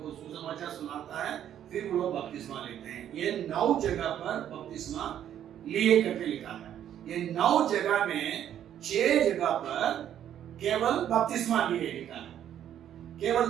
सुसमाचार सुनाता है, फिर वो लोग बपतिस्मा लेते हैं। ये 9 जगह पर बपतिस्मा लिए करके लिखा है। ये 9 जगह में 6 जगह पर केवल बपतिस्मा लिए लिखा है,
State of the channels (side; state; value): left; quieter; 10.4 dB